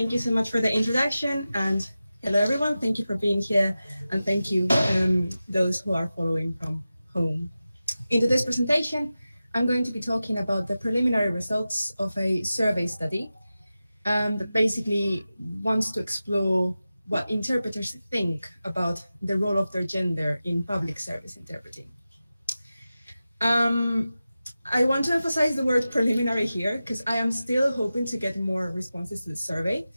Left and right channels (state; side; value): inverted; both; correlation -0.94